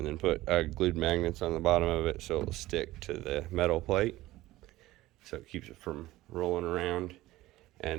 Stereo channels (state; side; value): quieter; left; 17.1 dB